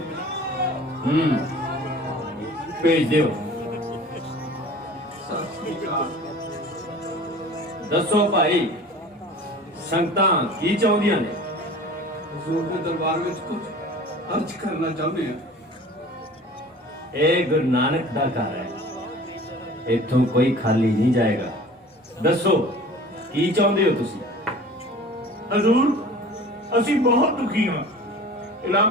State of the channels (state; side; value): normal; both; correlation 0.42